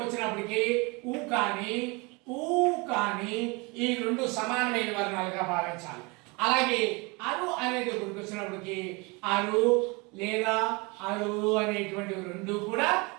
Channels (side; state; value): left; quieter; 27.7 dB